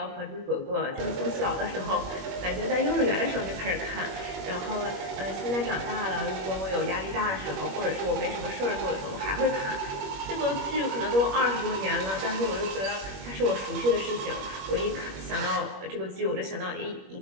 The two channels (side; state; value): left; late; 21 ms